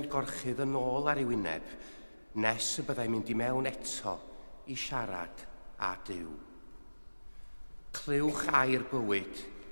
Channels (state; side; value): inverted; both; correlation -1.00